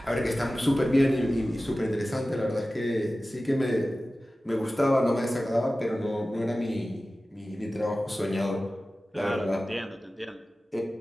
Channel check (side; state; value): both; normal; correlation 0.96